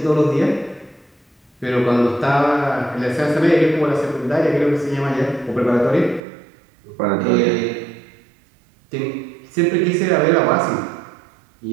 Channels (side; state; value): left; drops out; at 6.2 s